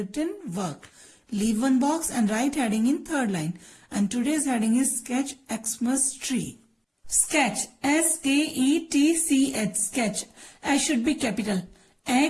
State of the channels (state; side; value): identical; both; correlation 1.00